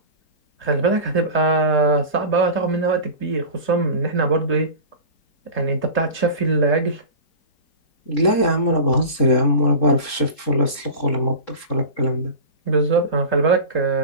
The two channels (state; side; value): late; right; 3.7 ms